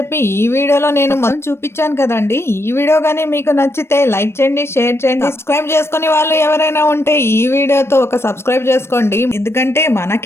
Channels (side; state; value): right; late; 0.12 ms